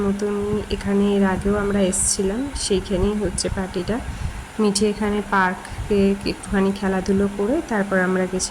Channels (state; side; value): identical; both; correlation 1.00